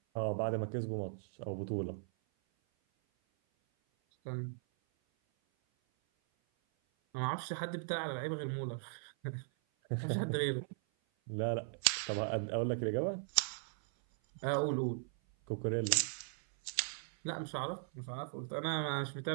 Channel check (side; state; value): left; silent; 52 dB below the other